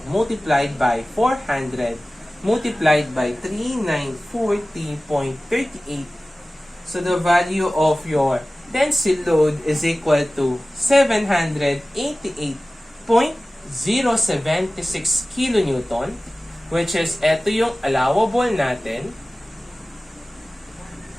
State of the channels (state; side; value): normal; both; correlation 0.97